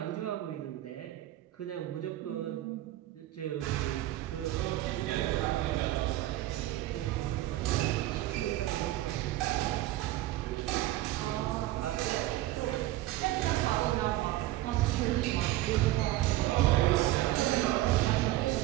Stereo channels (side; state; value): left; quieter; 15.8 dB